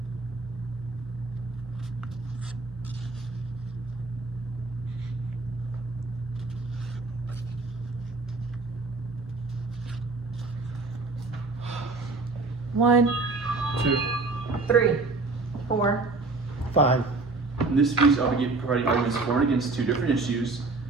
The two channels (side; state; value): left; quieter; 3.6 dB